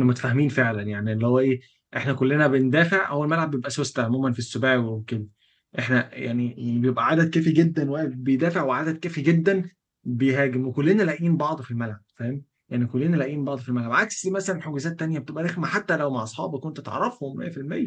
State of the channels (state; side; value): identical; both; correlation 1.00